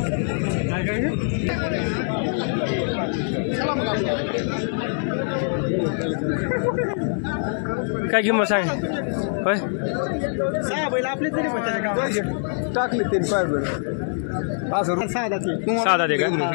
काय किंमत सांग? होय 6 बैल आपले तरी पण त्याच्या गावात टाकले ते पाय बरं 6 साधा दे का?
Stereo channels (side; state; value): right; silent; 60 dB below the other